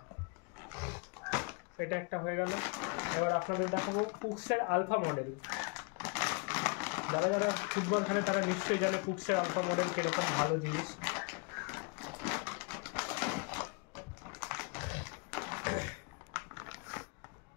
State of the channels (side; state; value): right; quieter; 32.2 dB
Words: এটা একটা হয়ে গেল। এবার আপনাদের দেখাবো কুকসের আলফা মডেল। যারা যারা ফুটবল খেলে তারা নিশ্চয়ই জানে কুকসের আলফা মডেল কিরকম ভালো জিনিস।